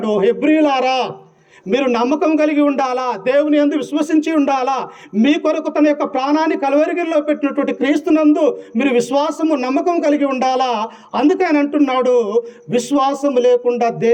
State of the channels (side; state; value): both; identical; correlation 1.00